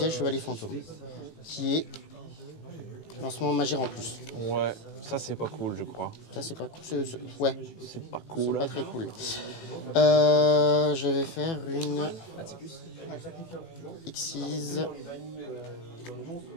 Chevalier Fantôme. Qui est lancement Magie en plus. Ouais. Ça c'est pas cool, je crois. Ça, c'est pas cool. Ouais, C'est pas c'est cool. pas très cool. Je vais faire une Xyz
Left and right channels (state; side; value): late; right; 18 ms